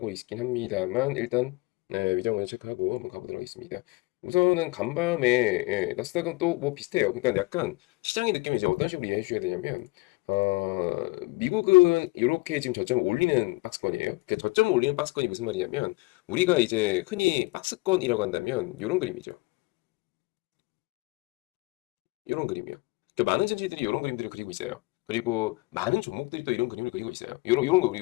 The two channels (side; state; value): right; quieter; 24.2 dB